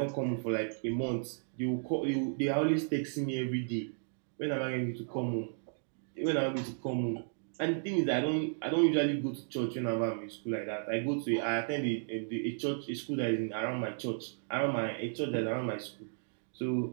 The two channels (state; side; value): silent; left; digital silence